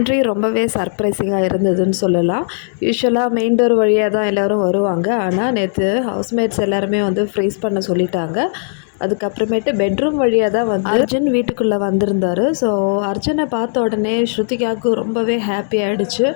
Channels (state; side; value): silent; right; 68 dB below the other